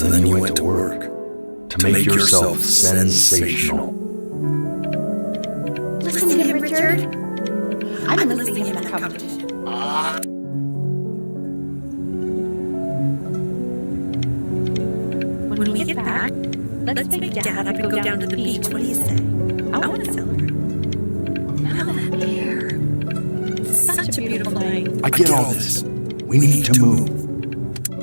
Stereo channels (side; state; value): both; inverted; correlation -1.00